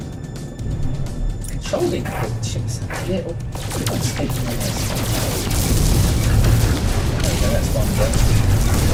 Controlling the ships a little bit unstable on this. There we go, that's one go.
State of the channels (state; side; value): identical; both; correlation 1.00